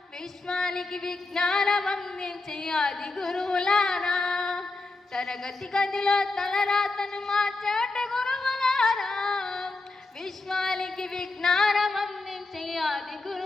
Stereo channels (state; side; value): quieter; right; 3.4 dB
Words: విశ్వానికి విజ్ఞానం అందించి ఆది గురువులారా, తరగతి గదిలో తలరాతను మార్చేటి గురువులారా, విశ్వానికి విజ్ఞానం అందించి ఆది